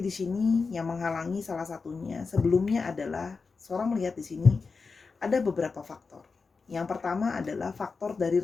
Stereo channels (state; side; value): quieter; right; 4.6 dB